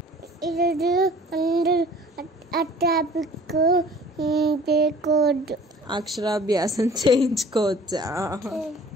ఈరోజు అందరూ అట్టాపిక్ పేకోడ్ అక్షరాభ్యాసం చేయించుకోవచ్చా?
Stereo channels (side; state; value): both; normal; correlation 0.48